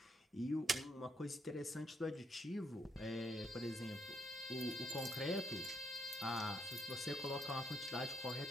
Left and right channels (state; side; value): normal; both; correlation 0.76